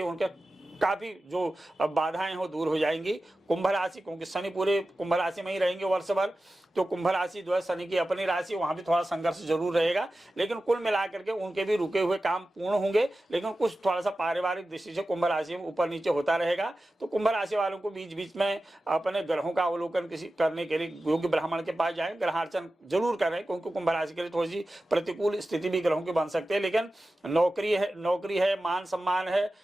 उनके काफी जो बाधाएं हो दूर हो जाएंगी। कुंभ राशि, क्योंकि शनि पूरे कुंभ राशि में ही रहेंगे वर्ष भर, तो कुंभ राशि जो है शनि की अपनी राशि, वहां भी थोड़ा संघर्ष जरूर रहेगा। लेकिन कुल मिलाकर के उनके भी रुके हुए काम पूर्ण होंगे। लेकिन कुछ थोड़ा सा पारिवारिक दृष्टि से कुंभ राशि में ऊपर नीचे होता रहेगा। तो कुंभ राशि वालों को बीच बीच में अपने ग्रहों का अवलोकन करने के लिए योग्य ब्राह्मण के पास जाए, ग्रहार्चन जरूर करें, क्योंकि कुंभ राशि के लिए थोड़ी सी प्रतिकूल स्थिति भी ग्रहों की बन सकती है। लेकिन नौकरी है, मान सम्मान है,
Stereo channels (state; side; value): normal; both; correlation 0.94